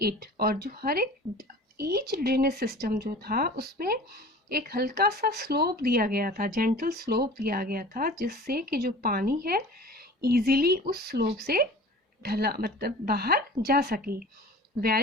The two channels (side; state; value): both; normal; correlation 0.41